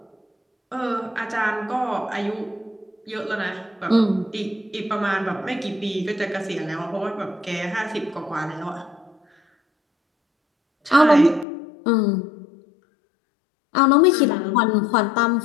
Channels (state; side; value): drops out; right; at 11.5 s